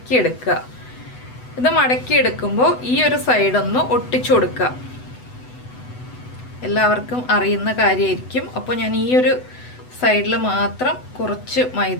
ഇത് മടക്കിയെടുക്കുമ്പോൾ ഈ ഒരു സൈഡ് ഒന്ന് ഒട്ടിച്ചു കൊടുക്കുക. എല്ലാവർക്കും അറിയുന്ന കാര്യമായിരിക്കും. അപ്പോൾ ഞാൻ ഈ ഒരു സൈഡിൽ മാത്രം കുറച്ച്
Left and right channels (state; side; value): late; right; 8.0 ms